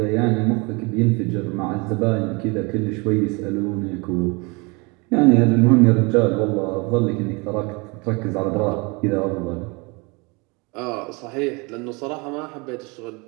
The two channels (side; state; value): left; quieter; 28.4 dB